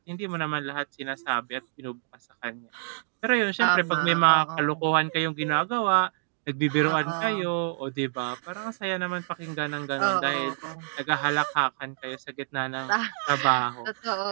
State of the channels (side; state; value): left; silent; digital silence